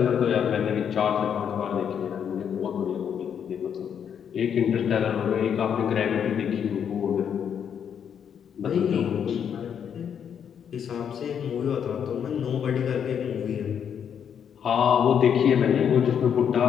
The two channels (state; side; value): quieter; right; 8.1 dB